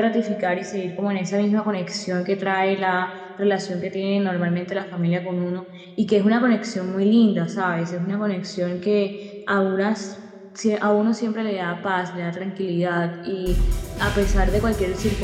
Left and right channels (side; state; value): both; identical; correlation 1.00